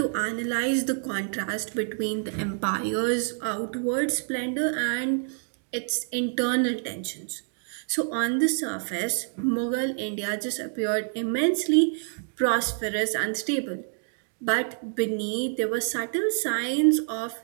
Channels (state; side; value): silent; left; digital silence